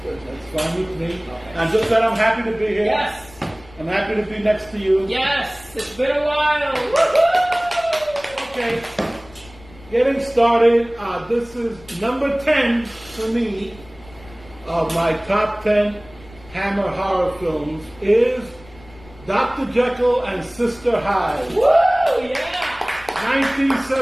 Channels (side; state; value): left; noise; rumble, 22 dB below the sound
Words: that's fine with me. Okay. And just that I'm happy to be here. Yes. I'm happy to be next to you. Yes. It's been a while. Woo-hoo! Okay. Getting started. This is number 10 for me of my top 10 Hammer horror films is Dr. Jekyll and Sister Hyde. Woo! Yeah.